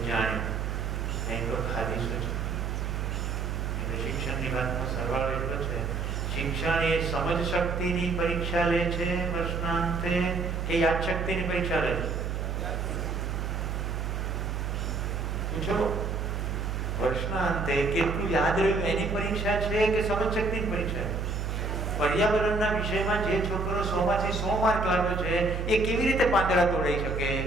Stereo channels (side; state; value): right; noise; hum, 2 dB below the sound